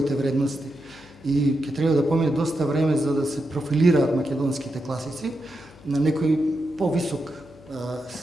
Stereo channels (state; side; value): noise; left; hum, 24 dB below the sound